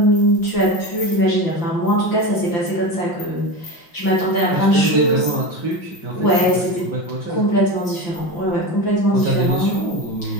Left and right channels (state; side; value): late; right; 5.9 ms